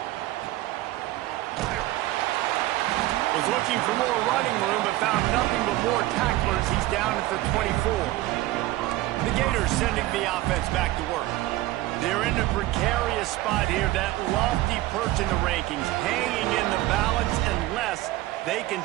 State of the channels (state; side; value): quieter; left; 17.0 dB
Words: Was looking for more running room, but found nothing but more tacklers. He's down at the 24. The Gators sending the offense back to work. They're in a precarious spot here, that lofty perch in the rankings, hanging in the balance unless they can